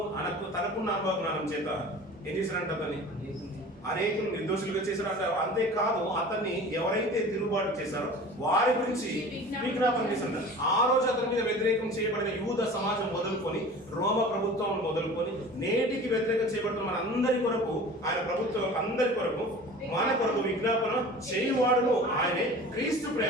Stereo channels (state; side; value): normal; both; correlation 0.40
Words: తనకున్న అనుభవ జ్ఞానం చేత ఏం చేశారంట? అతన్ని అనేకులు నిర్దోషులుగా చేశారంట. అంతేకాదు అతన్ని ఎవరైతే తిరుగుబాటు చేశారో వారి గురించి విజ్ఞాపన చేశారంట. ఆ రోజు అతని మీద వ్యతిరేకం చేయబడిన యూద సమాజం మొదలుకొని, రోమ ప్రభుత్వం మొదలుకొని, నేటికి వ్యతిరేకం చేయబడుతున్న మన అందరి కొరకు, ఆయన ప్రభుత్వం అందరి కొరకు, మన కొరకు విజ్ఞాపన చేయువాడును ఆయనే. క్రీస్తు